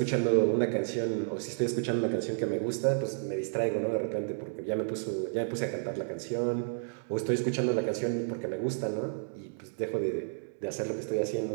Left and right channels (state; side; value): silent; left; digital silence